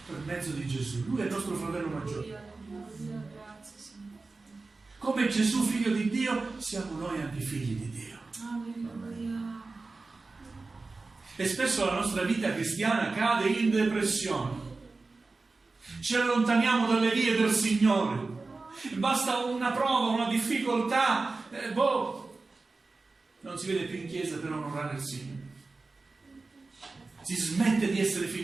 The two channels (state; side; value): quieter; left; 3.7 dB